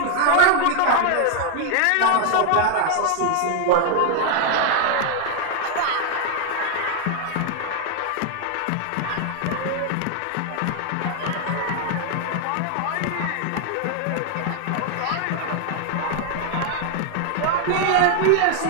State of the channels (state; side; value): different; both; correlation 0.00